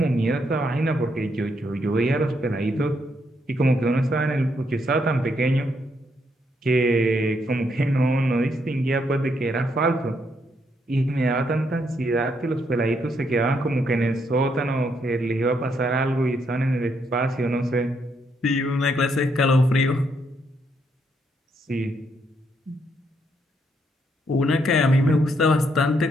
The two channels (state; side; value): normal; both; correlation 0.75